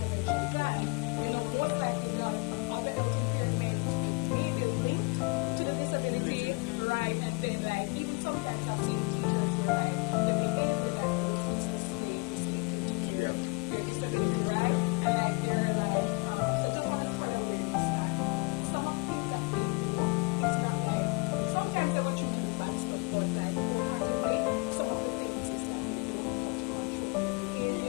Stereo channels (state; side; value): quieter; right; 31.4 dB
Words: plan, you know, most likely if they have other health impairment, it may be linked to the disability, right? And then like even sometimes I've seen teachers where like the behavior that those kids display is linking to their disability, right? And like they're like, so just want to spread awareness that some of the things that they do is not like, well, sometimes they will choose to do bad stuff, but like wholeheartedly, some of the things is that they don't know how to control their